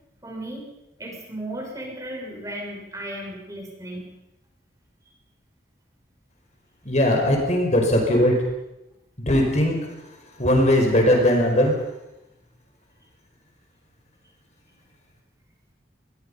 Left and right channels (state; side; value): normal; both; correlation 0.50